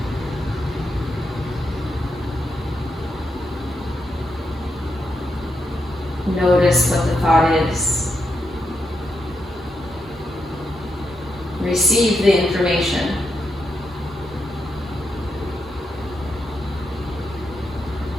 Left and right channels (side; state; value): both; normal; correlation 0.83